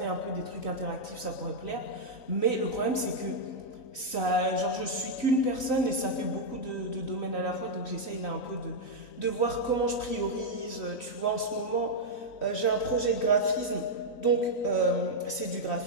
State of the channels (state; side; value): late; right; 3.9 ms